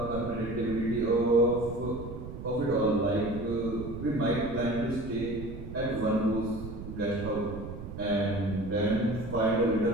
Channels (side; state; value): right; noise; rumble, 10 dB below the sound